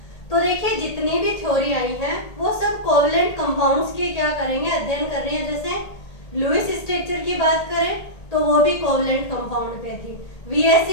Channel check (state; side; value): late; right; 1.8 ms